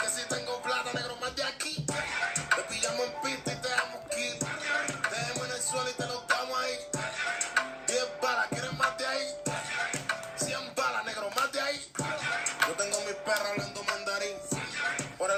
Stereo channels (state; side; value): identical; both; correlation 1.00